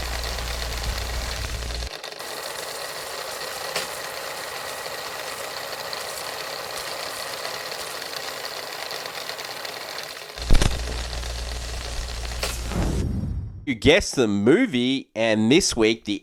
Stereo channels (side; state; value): both; identical; correlation 1.00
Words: You guessed the movie, and this week